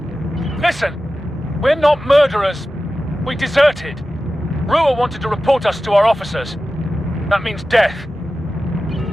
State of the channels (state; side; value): normal; both; correlation 0.94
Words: Listen! We're not murderers. We deserted. Rua wanted to report us to our officers. That means death.